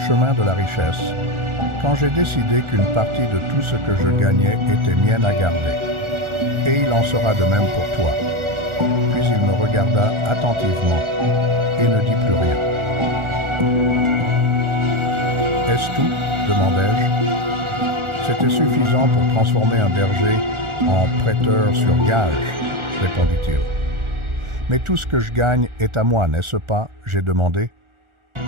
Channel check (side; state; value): left; late; 1.4 ms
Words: de la richesse quand j'ai décidé qu'une partie de tout ce que je gagnais était mienne à garder. Et il en sera de même pour toi. Puis il me regarda attentivement et ne dit plus rien. « Est-ce tout ?» demandai-je. C'était suffisant pour transformer un berger en prêteur sur gage, répondit-il. « Mais tout ce que je gagne est à moi, n'est-ce pas ?» j'ai demandé.